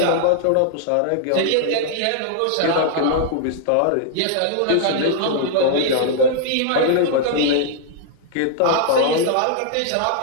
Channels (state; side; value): different; both; correlation -0.01